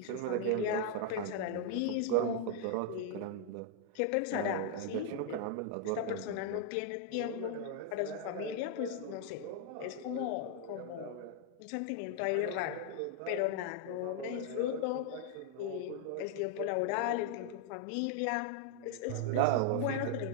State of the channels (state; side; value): different; both; correlation 0.00